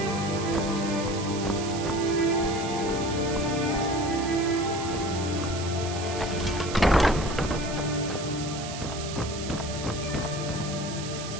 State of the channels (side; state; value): right; noise; hiss, 10 dB below the sound